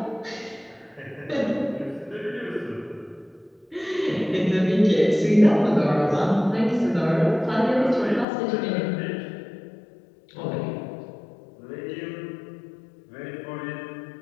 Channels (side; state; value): right; drops out; at 8.2 s